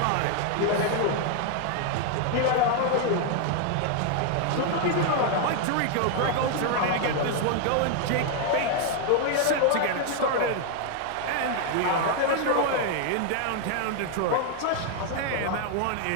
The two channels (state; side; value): different; both; correlation 0.00